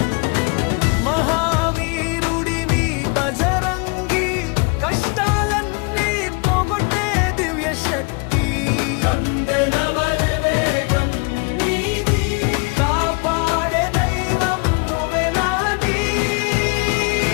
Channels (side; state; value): right; quieter; 30.4 dB